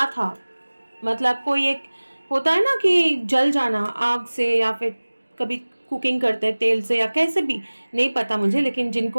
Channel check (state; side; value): inverted; both; correlation -1.00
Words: था, मतलब कोई एक होता है ना कि जल जाना आग से, या फिर कभी कुकिंग करते हैं तेल से या कैसे भी, नहीं पता मुझे, लेकिन